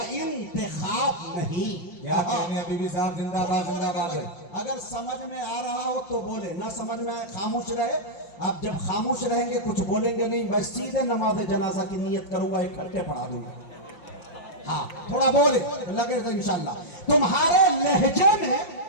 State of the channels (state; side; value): late; right; 5.7 ms